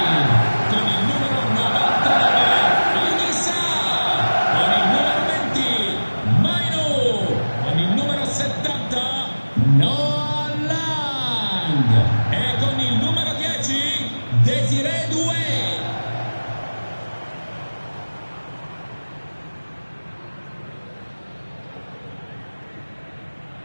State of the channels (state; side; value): inverted; both; correlation -1.00